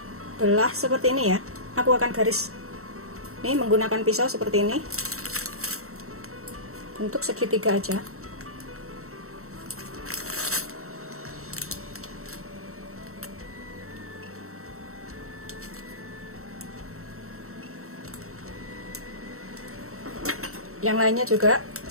belah seperti ini ya. Aku akan garis ini menggunakan pisau seperti ini, bentuk segitiga aja. Yang lainnya juga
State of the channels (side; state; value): left; late; 0.63 ms